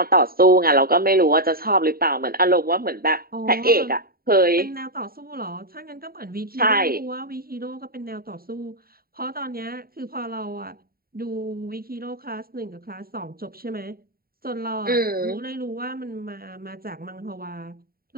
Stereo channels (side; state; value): left; late; 0.43 ms